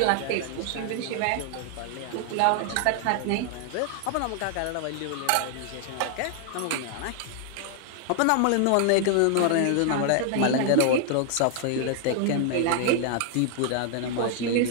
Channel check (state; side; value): different; both; correlation 0.00